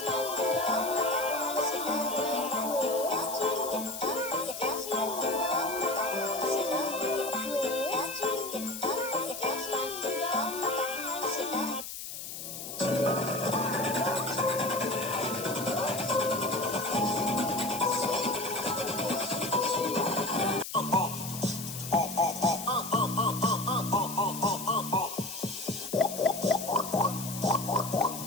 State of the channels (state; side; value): noise; left; hiss, 8 dB below the sound